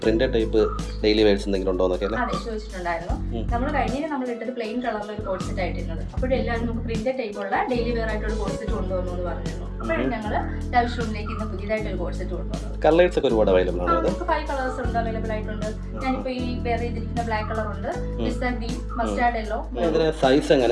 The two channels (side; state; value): both; identical; correlation 1.00